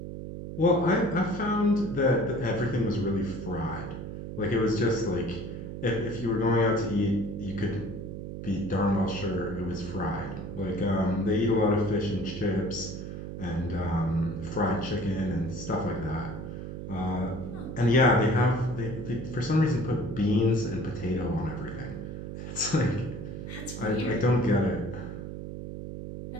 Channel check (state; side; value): noise; right; hum, 8 dB below the sound